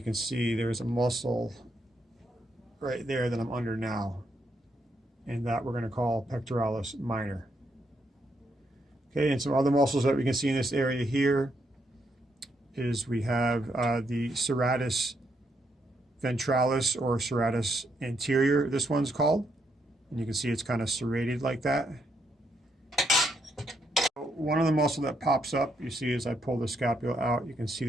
see there's a muscle right there that I'm under now. And that we're going to call pectoralis minor. Okay, and some other muscles that we can see in this area here is we have the serratus ventralis, or serratus anterior, this one's called. And you can see it's kind of serrated like that. One of the muscle that pops up, you see as I pull the scapula out, you can see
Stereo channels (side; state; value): both; normal; correlation 0.77